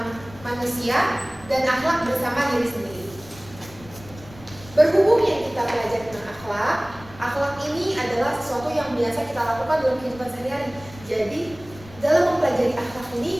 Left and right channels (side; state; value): left; noise; rumble, 20 dB below the sound